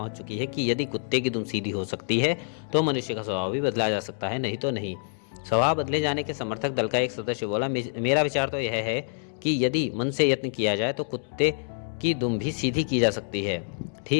चुकी है कि यदि कुत्ते की दुम सीधी हो सकती है तो मनुष्य का स्वभाव भी बदला जा सकता है, नहीं तो नहीं। स्वभाव बदले जाने के समर्थक दल का एक सदस्य बोला, मेरा विचार तो यह है कि यदि मन से यत्न किया जाए तो कुत्ते की दुम भी सीधी की जा सकती है।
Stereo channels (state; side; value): silent; right; digital silence